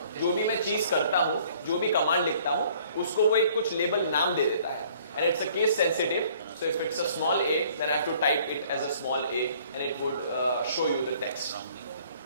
जो भी मैं चीज करता हूँ, जो भी कमांड लिखता हूँ, उसको वो एक कुछ लेबल नाम दे देता है, and it's a case sensitive. So if it's a small a, then I have to type it as a small a, and it would show you the text.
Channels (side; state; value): both; inverted; correlation -0.57